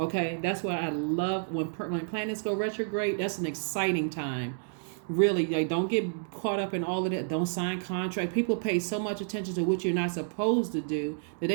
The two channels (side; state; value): left; silent; digital silence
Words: that's why I love when planets go retrograde. That's an exciting time. Really, like, don't get caught up in all of that. Don't sign contract. People pay so much attention to what you're not supposed to do that